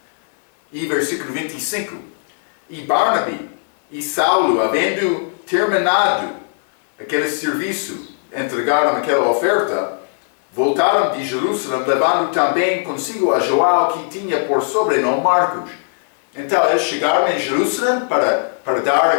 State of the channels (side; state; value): right; silent; 59 dB below the other